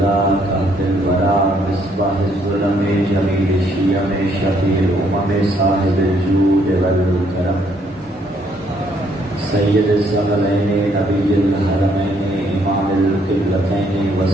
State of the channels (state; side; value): normal; both; correlation 0.69